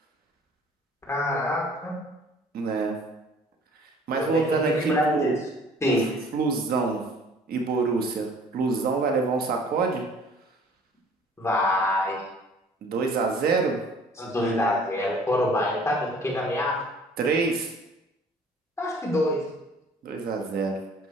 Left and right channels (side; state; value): both; normal; correlation 0.52